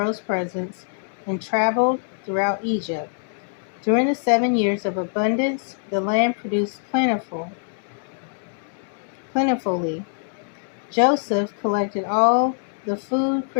presence and traveled throughout Egypt. During the 7 years of abundance, the land produced plentifully. Joseph collected all the food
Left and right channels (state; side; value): silent; right; 63 dB below the other